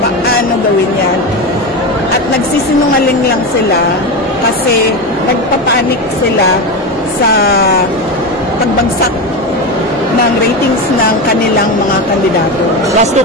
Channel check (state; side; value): normal; both; correlation 0.18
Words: paano gawin yan. At nagsisinungaling lang sila kasi nagpapanik sila sa pagbagsak ng ratings ng kanilang mga kandidato. Last two